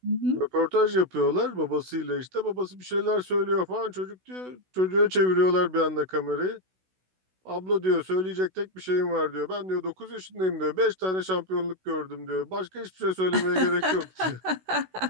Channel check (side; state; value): left; late; 16 ms